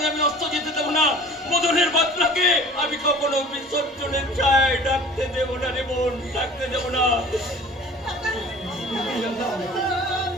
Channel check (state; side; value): normal; both; correlation 0.45